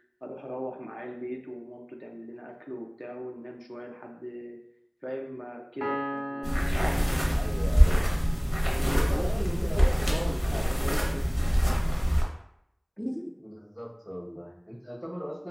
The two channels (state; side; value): identical; both; correlation 1.00